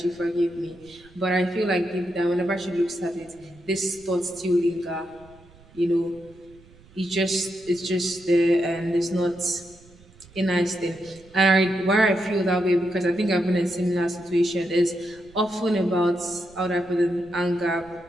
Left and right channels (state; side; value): noise; right; rumble, 26 dB below the sound